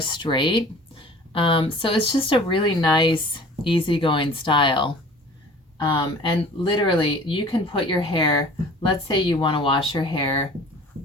straight. So it's just a really nice, easygoing style. And literally, you can put your hair, let's say you want to wash your hair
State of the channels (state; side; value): normal; both; correlation 0.46